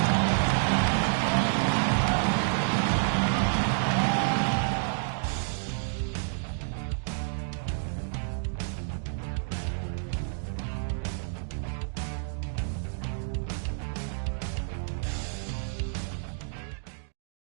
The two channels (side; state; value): left; silent; digital silence